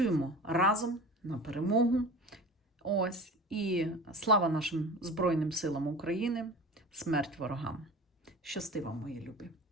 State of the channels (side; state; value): both; normal; correlation 0.36